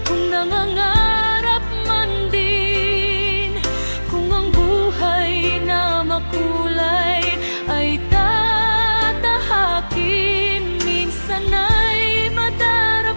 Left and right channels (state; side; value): inverted; both; correlation -1.00